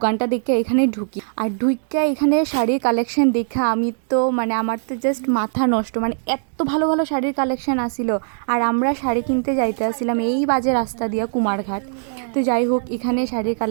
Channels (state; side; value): silent; left; digital silence